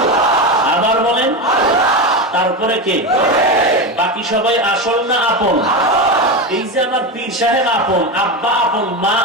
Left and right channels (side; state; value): both; normal; correlation 0.17